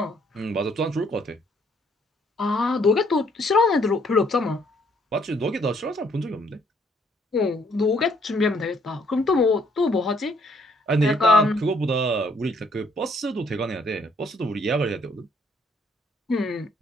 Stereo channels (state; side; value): normal; both; correlation 0.66